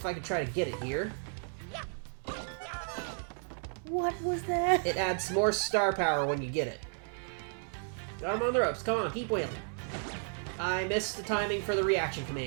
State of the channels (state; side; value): silent; left; 56 dB below the other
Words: I can try to get it here. What was that? It adds more star power when you get it. Got him on the ropes. Come on, keep wailing. I missed the timing for the reaction